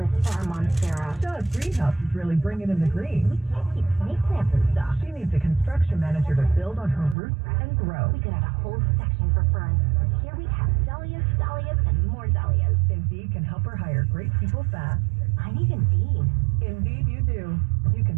for our Monstera. Shaw's greenhouse is really bringing in the green. We can't keep snake plants and stuff. She needs a construction manager to build on her roots and grow. We could have a whole section for ferns. Here we have dahlias, and more dahlias. Indeed can help her hire great people fast. I need Indeed. Indeed you do. You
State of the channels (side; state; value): left; drops out; at 7.2 s